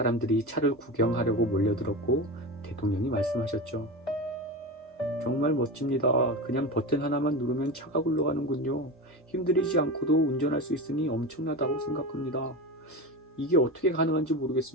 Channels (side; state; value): both; normal; correlation 0.23